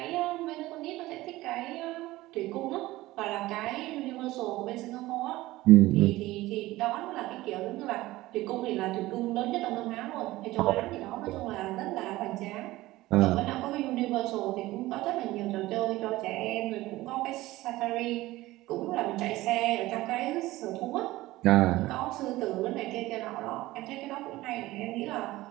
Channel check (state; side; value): quieter; left; 17.9 dB